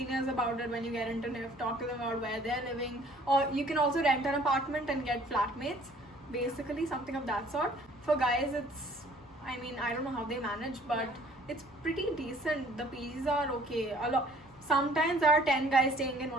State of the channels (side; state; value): both; normal; correlation 0.56